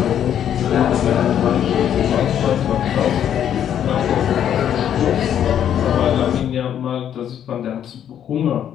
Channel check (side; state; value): right; quieter; 9.8 dB